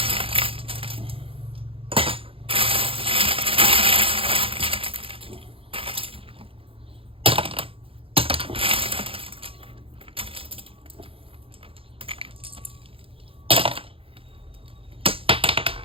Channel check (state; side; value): late; left; 0.27 ms